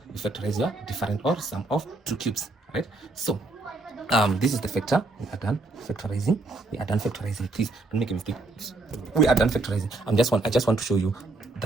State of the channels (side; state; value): left; quieter; 3.1 dB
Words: factorize your difference or sum of two cubes, right? So this is the factor. We are done factorizing. We are done factorizing. Please don't make a mistake. We are done factorizing. I just want to show you